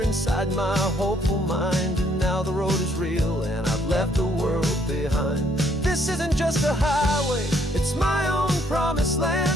my hopeful mind, and now the road is real and I've left the world behind. This isn't just a highway, it's my own promised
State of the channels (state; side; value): normal; both; correlation 0.67